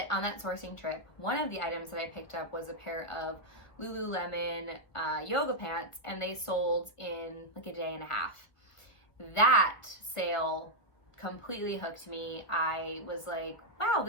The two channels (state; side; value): late; right; 1.5 ms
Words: on that sourcing trip, one of the items that I picked up was a pair of Lululemon yoga pants, and they sold in like a day and a half. That sale completely hooked me. I was like, wow,